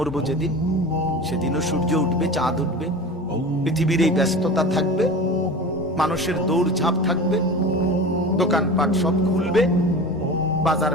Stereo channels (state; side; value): normal; both; correlation 0.33